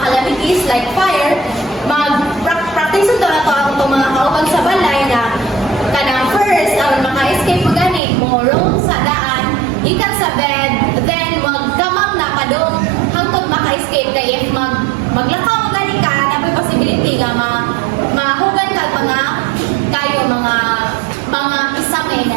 calamities like fire, mag-practice ito na to ang mga kauban sa balay na kanang first, ang maka-escape mo gani, mo roll sa daan, ikan sa bed, then magkamang na padong hangtod maka-escape kay if maglakaw mo gani ka, na may possibility nga mahugan ka mga kayo mga isangay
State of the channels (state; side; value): drops out; left; at 8.0 s